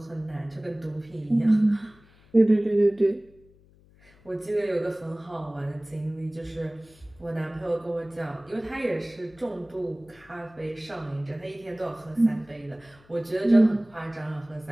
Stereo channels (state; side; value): noise; left; hum, 28 dB below the sound